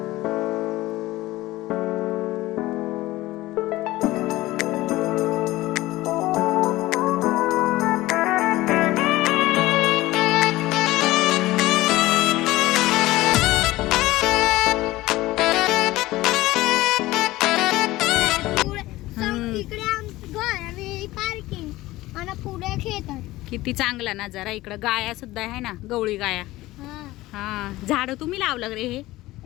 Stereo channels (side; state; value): right; quieter; 17.8 dB